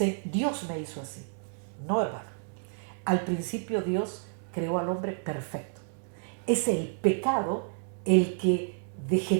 Dios me hizo así. No, hermano. Al principio Dios creó al hombre perfecto. Es el pecado el que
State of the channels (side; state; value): left; silent; 58 dB below the other